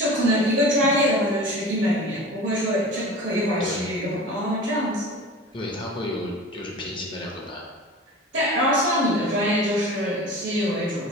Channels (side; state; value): both; normal; correlation 0.37